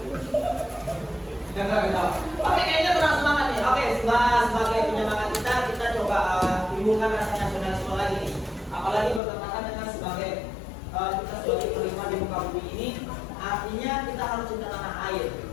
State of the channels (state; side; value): drops out; right; at 9.2 s